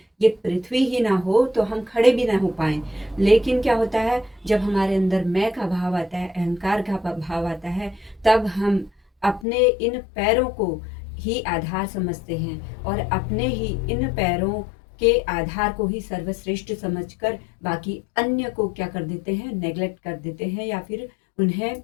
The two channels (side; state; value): right; drops out; at 9.5 s